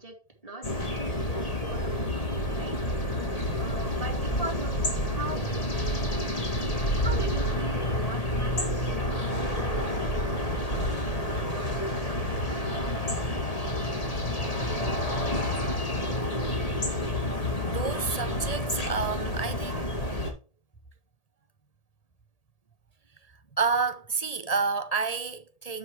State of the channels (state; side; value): late; right; 1.8 ms